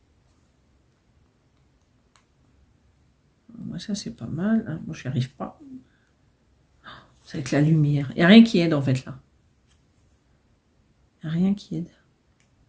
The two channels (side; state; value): both; identical; correlation 1.00